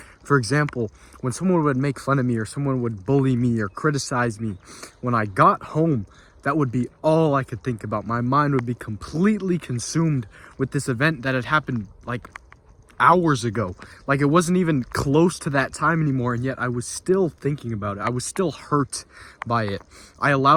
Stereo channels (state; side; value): identical; both; correlation 1.00